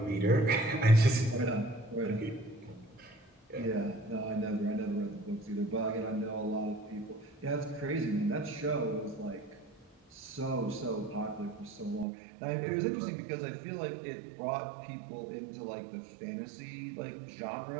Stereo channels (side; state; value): left; drops out; at 12.1 s